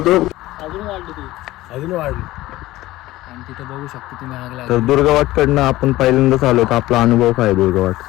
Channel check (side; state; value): right; quieter; 17.0 dB